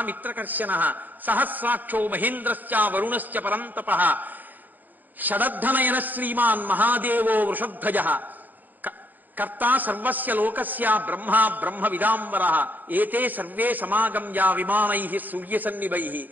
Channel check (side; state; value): left; late; 0.086 ms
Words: మిత్రకర్షణ సహస్రాక్షో మహేంద్రశ్చ వరుణశ్చ పరంతప షడద్ధనయన శ్రీమాన్ మహాదేవో వృషధ్వజ కర్తా సర్వస్య లోకస్య బ్రహ్మ బ్రహ్మ విదాంబర ఏతే సర్వే సమాగమ్య విమానై సూర్యసన్నిభై